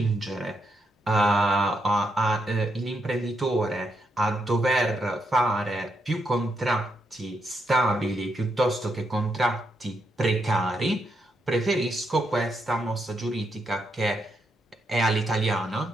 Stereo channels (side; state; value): both; normal; correlation 0.81